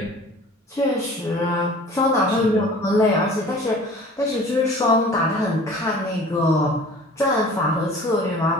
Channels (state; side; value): normal; both; correlation 0.46